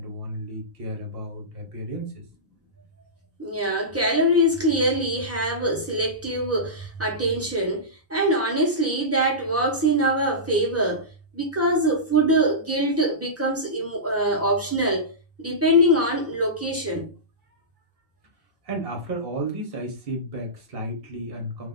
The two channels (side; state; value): both; normal; correlation -0.17